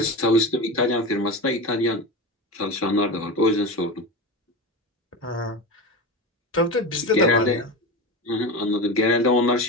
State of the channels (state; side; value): normal; both; correlation 0.24